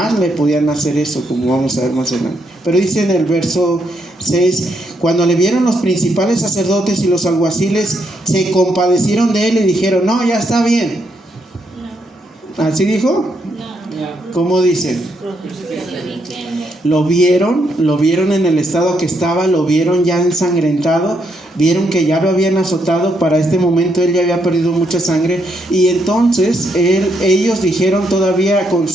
le podían hacer eso, como vamos a ver más adelante. Pero dice en el verso 6: cuando le vieron los principales sacerdotes y los alguaciles, se compadecieron de él y dijeron: no, ya está bien. No. ¿Así dijo? No. ¿Cómo dice? Lo vieron en el estado que estaba, lo vieron ya ensangrentado, vieron que ya lo habían azotado. Para este momento él ya había perdido mucha sangre, y entonces ellos dijeron, todavía con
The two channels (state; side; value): normal; both; correlation 0.77